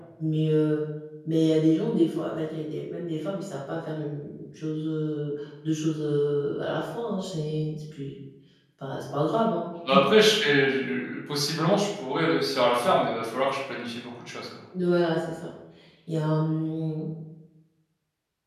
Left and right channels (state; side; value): identical; both; correlation 1.00